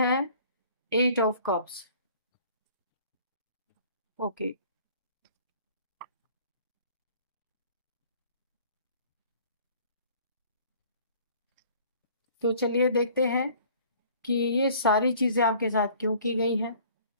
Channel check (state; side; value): inverted; both; correlation -0.52